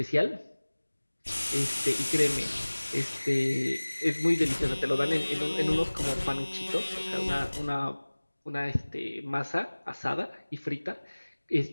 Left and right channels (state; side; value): inverted; both; correlation -1.00